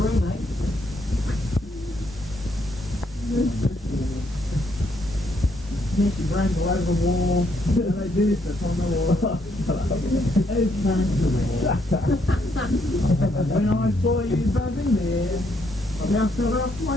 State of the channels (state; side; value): normal; both; correlation 0.73